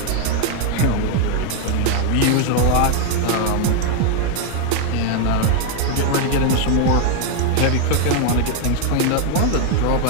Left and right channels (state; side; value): different; both; correlation 0.01